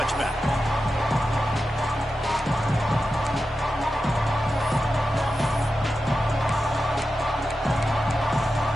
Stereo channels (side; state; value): both; normal; correlation 0.91